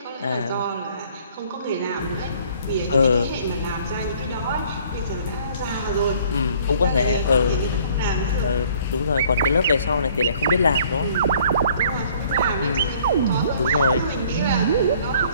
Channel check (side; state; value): both; inverted; correlation -0.57